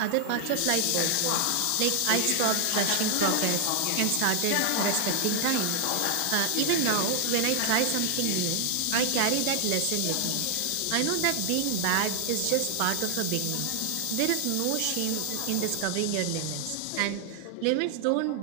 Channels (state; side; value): different; both; correlation 0.00